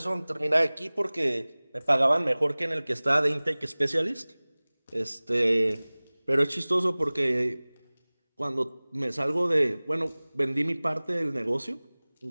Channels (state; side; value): inverted; both; correlation -1.00